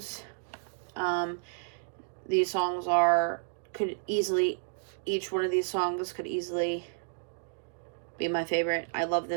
These songs each one of these songs could easily be my favorite. I love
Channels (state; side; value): silent; left; digital silence